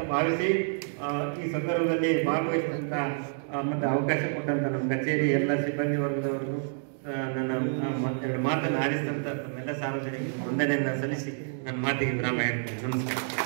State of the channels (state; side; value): silent; left; digital silence